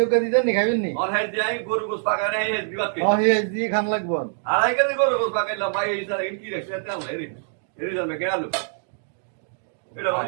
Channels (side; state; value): left; silent; digital silence